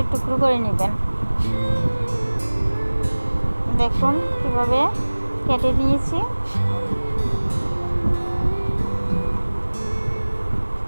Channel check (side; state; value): both; inverted; correlation -1.00